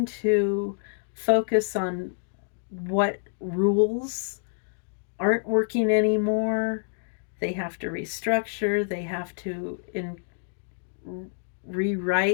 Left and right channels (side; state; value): right; silent; digital silence